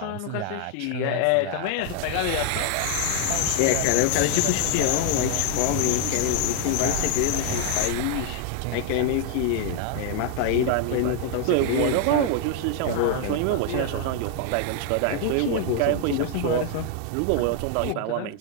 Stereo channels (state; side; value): different; both; correlation 0.00